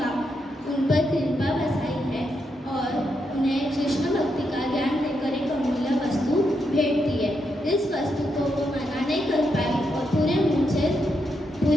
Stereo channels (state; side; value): normal; both; correlation 0.82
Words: उन पर कृपा बसाई है और उन्हें कृष्ण भक्ति का ज्ञान देकर एक अमूल्य वस्तु भेंट दी है। इस वस्तु को वो मना नहीं कर पाई और पूरे मन से